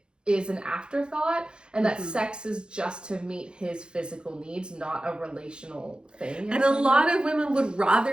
is an afterthought, and that sex is just to meet his physical needs, not a relational thing. And a lot of women would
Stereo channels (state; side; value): late; left; 0.050 ms